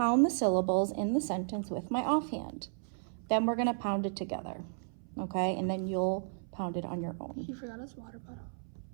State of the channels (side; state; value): left; silent; 55 dB below the other